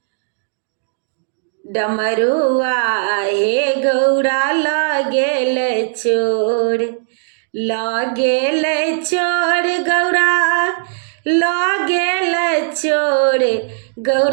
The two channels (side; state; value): left; silent; digital silence